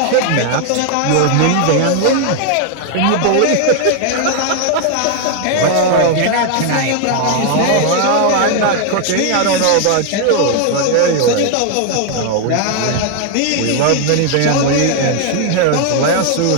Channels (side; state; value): both; different; correlation 0.00